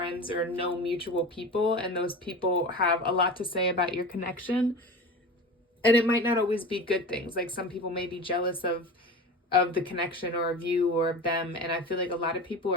or know mutual people, and those people have a lot to say about your connection. And it might not always be good things. Like some people may be jealous of the connection or of you or of them. And I feel like a lot of people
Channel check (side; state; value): both; normal; correlation 0.32